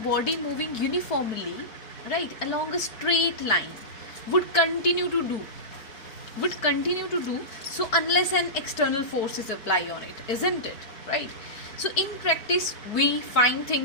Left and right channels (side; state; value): right; late; 4.6 ms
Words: right, along a straight line would continue to do so unless an external force is applied on it, isn't it, right? So in practice we find